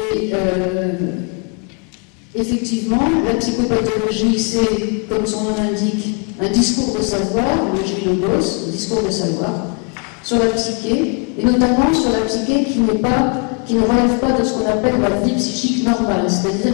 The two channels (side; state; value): right; quieter; 33.3 dB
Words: effectivement, la psychopathologie, c'est, comme son nom l'indique, un discours de savoir, le logos, un discours de savoir, sur la psyché, et notamment sur la psyché qui ne relève pas de ce qu'on appelle la vie psychique normale, c'est-à-dire